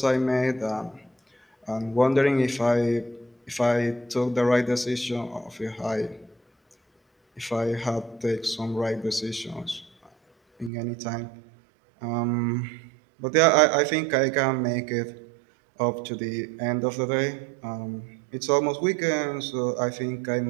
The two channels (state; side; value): drops out; left; at 10.7 s